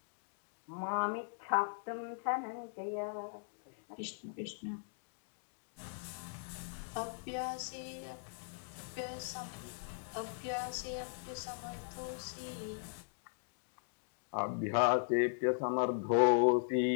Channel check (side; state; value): right; silent; digital silence